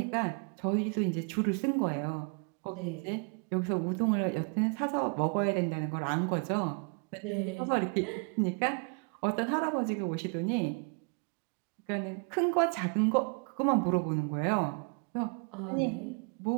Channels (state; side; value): quieter; left; 37.4 dB